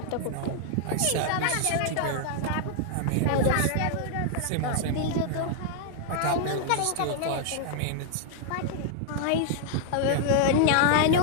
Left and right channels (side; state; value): both; different; correlation 0.00